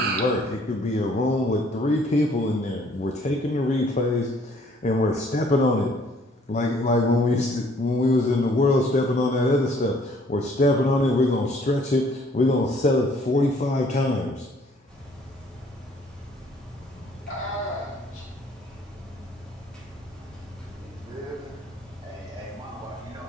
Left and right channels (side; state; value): both; normal; correlation 0.60